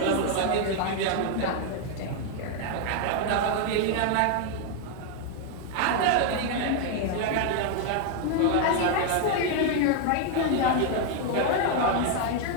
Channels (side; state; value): both; different; correlation 0.00